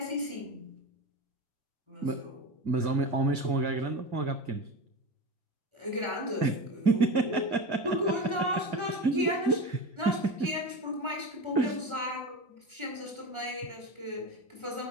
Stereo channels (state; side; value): late; left; 1.3 ms